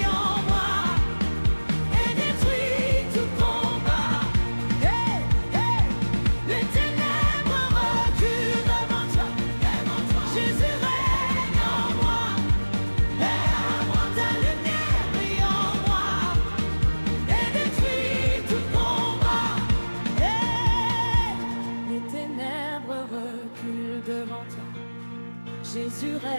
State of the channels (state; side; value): inverted; both; correlation -1.00